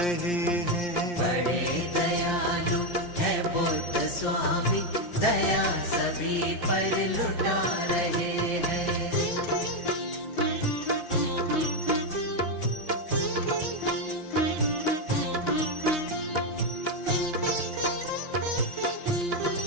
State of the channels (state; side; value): late; right; 5.7 ms